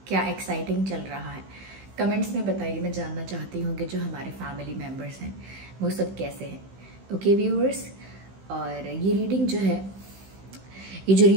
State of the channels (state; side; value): late; left; 15 ms